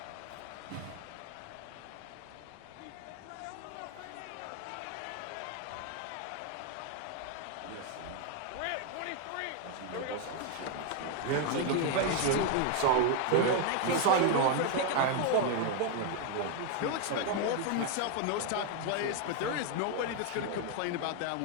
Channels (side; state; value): both; different; correlation 0.01